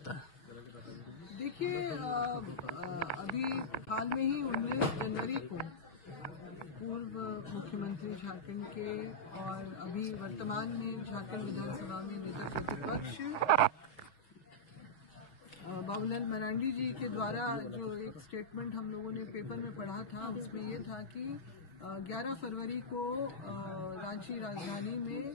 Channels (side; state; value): right; late; 5.4 ms